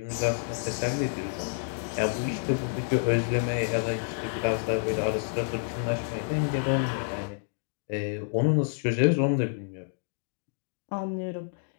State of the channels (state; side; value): silent; right; digital silence